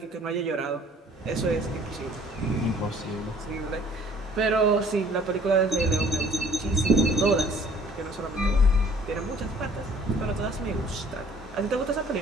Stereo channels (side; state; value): both; normal; correlation 0.55